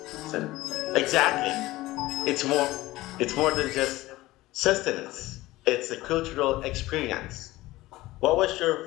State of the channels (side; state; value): right; quieter; 18.2 dB